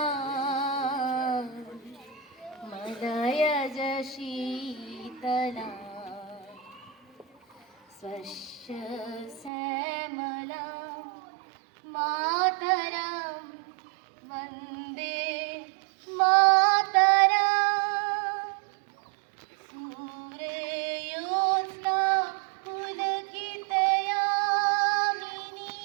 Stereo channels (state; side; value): drops out; left; at 9.5 s